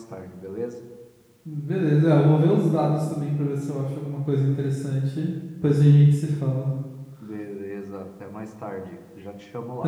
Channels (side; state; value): both; identical; correlation 1.00